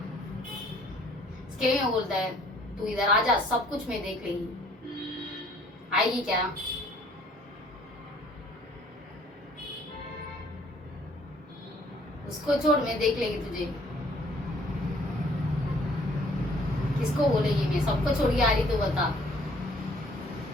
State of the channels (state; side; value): normal; both; correlation 0.59